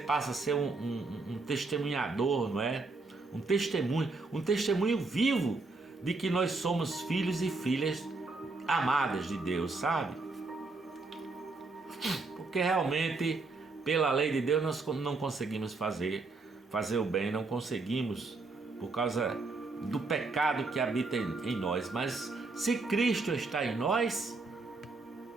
a ser um testemunhador, não é? Um testemunho vivo de que nós somos filhos e filhas amadas de Deus, sabe? Porque realmente, pela lei de Deus, nós não conseguimos fazer o bem, não conseguimos, por causa do pecado que habita em nós. Mas se Cristo está em nós,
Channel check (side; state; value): left; quieter; 3.6 dB